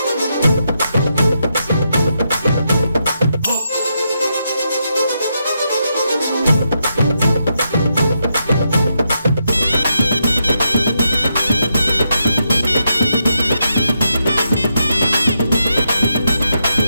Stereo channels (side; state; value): both; inverted; correlation -0.82